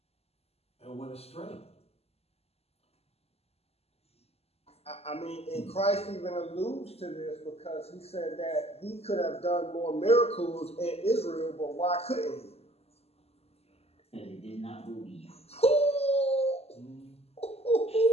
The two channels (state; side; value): late; right; 0.29 ms